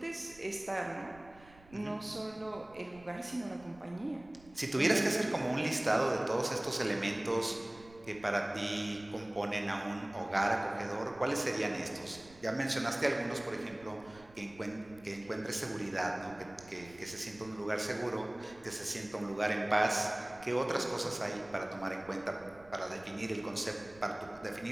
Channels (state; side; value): noise; right; rumble, 23 dB below the sound